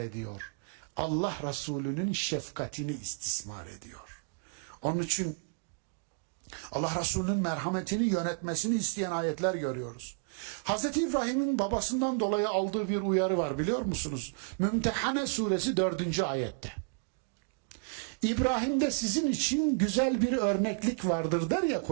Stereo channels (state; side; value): quieter; left; 36.3 dB